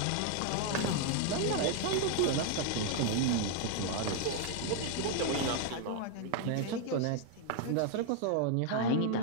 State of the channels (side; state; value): both; different; correlation 0.00